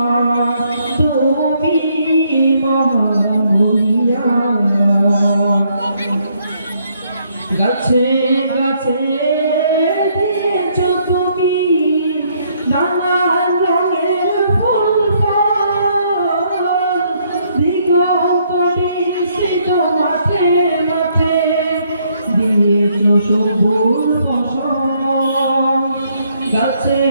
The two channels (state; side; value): inverted; both; correlation -0.70